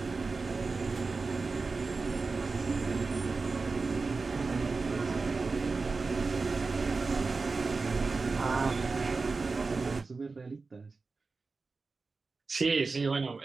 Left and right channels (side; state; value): left; quieter; 4.1 dB